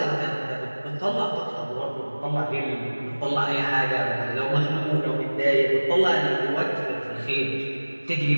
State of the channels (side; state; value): both; inverted; correlation -1.00